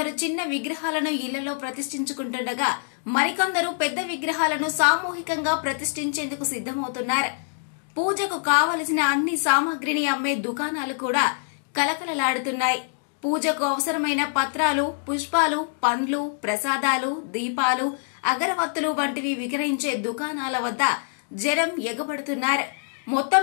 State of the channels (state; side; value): silent; right; digital silence